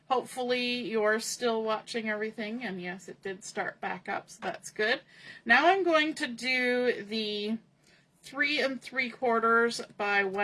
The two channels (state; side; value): identical; both; correlation 1.00